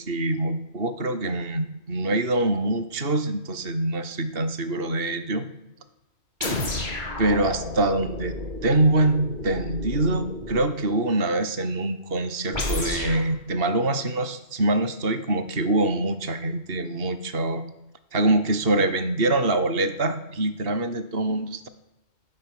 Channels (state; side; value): late; left; 2.7 ms